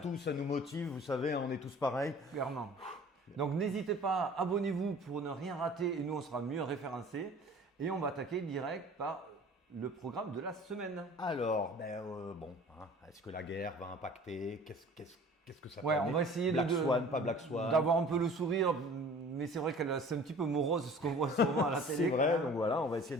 ça nous motive, vous savez, on est tous pareils. Clairement. Donc n'hésitez pas, abonnez-vous pour ne rien rater et nous on sera mieux référencés. Et on va attaquer direct par le programme de la semaine. Alors, est-ce que la guerre va impacter? Qu'est-ce que ça peut on va essayer Black Swan, pas Black Swan. d'avoir un peu le sourire, mais c'est vrai que c'est un petit peu morose ce qu'on voit souvent à la télé. C'est vrai, donc voilà, on va essayer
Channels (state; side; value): normal; both; correlation 0.46